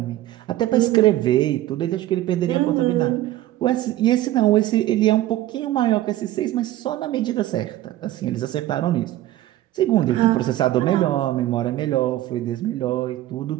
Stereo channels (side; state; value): left; quieter; 14.7 dB